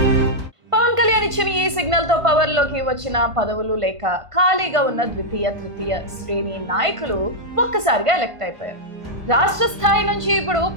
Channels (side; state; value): left; late; 1.5 ms